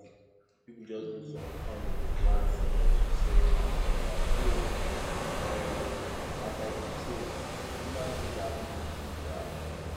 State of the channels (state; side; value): identical; both; correlation 1.00